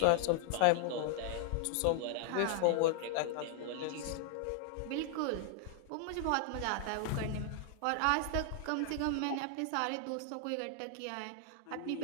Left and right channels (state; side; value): different; both; correlation 0.00